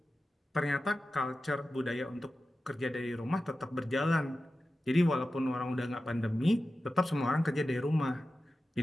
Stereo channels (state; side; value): normal; both; correlation 0.93